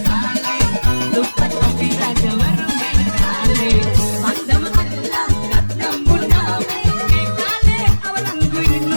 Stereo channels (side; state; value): both; inverted; correlation -1.00